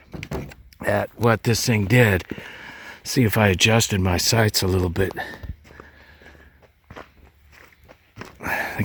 at what this thing did. See if I adjusted my sights a little bit. I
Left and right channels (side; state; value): both; identical; correlation 1.00